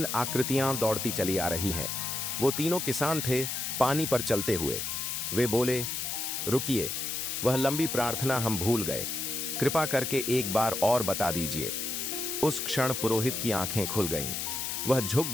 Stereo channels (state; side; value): noise; left; hiss, 2 dB below the sound